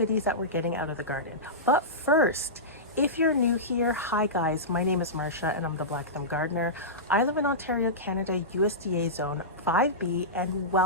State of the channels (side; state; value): both; normal; correlation -0.16